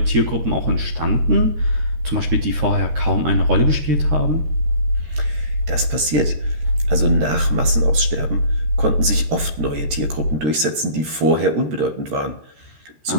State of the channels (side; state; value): left; late; 13 ms